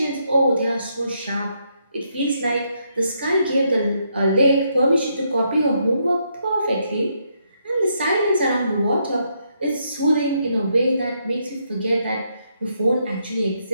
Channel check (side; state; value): both; inverted; correlation -0.76